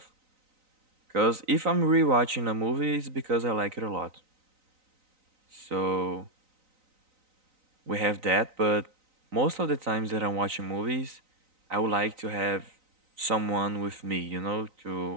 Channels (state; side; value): late; left; 3.9 ms